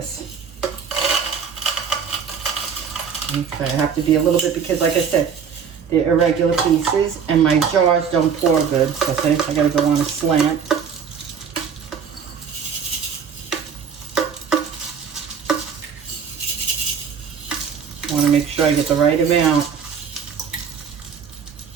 Okay, I have to be a little bit because, like I said, they're irregular pieces and my jars don't pour good. So I gotta go on a slant. I want to make sure I get the right amount.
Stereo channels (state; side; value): quieter; left; 6.9 dB